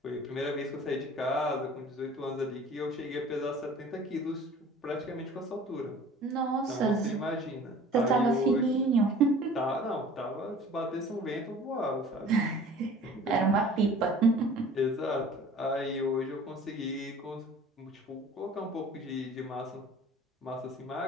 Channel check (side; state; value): both; normal; correlation 0.47